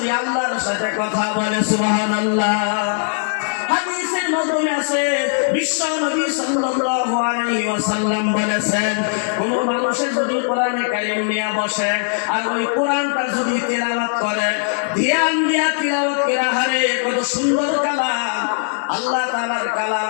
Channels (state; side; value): silent; right; digital silence